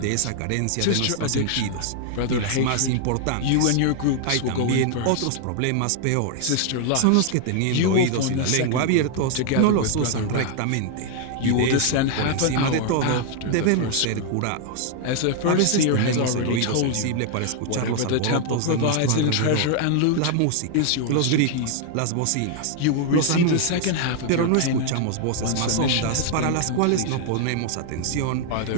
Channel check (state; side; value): different; both; correlation 0.00